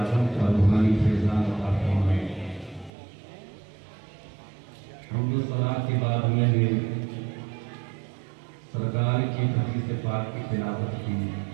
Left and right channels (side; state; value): left; drops out; at 2.9 s